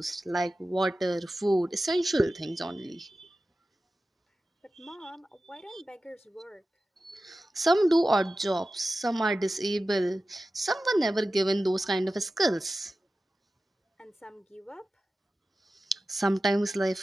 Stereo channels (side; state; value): both; normal; correlation 0.94